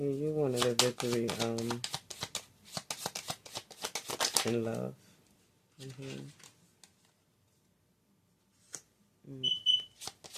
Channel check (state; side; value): identical; both; correlation 1.00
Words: you wanted a victory in love. Mm-hmm.